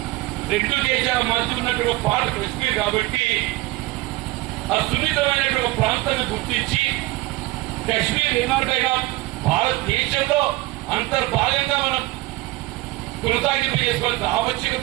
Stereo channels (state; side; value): quieter; left; 19.7 dB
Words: రెండు దేశాల మధ్య ఉన్నటువంటి పార్ట్ కశ్మీర్ కాబట్టి ఆ సున్నితమైనటువంటి ప్రాంతాన్ని గుర్తించి కశ్మీర్ ఏనాటైనా భారతదేశంలో అంతర్భాగంగా మనం కొనసాగింపు చేసుకోవాల్సిన